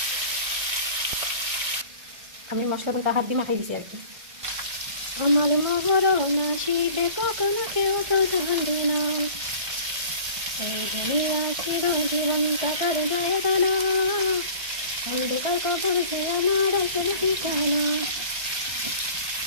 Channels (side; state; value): left; late; 1.6 ms